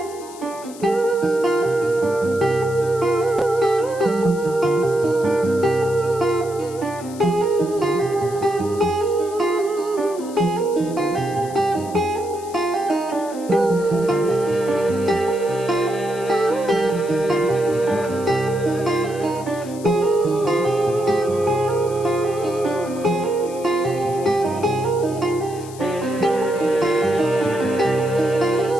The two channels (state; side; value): noise; left; hiss, 18 dB below the sound